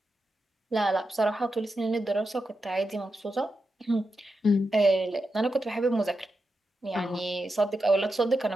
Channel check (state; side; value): normal; both; correlation 0.88